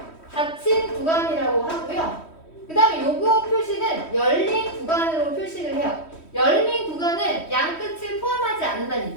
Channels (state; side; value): late; right; 3.1 ms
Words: 닫힌 구간이라고 하고요. 그 다음에 요거 표시는 열린 구간으로 표시를 해요. 열린 구간은 양 끝을 포함하지 않는다는